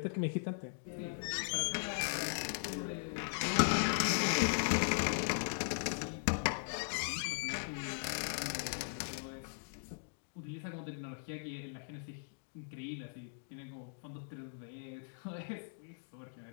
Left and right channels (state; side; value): silent; right; digital silence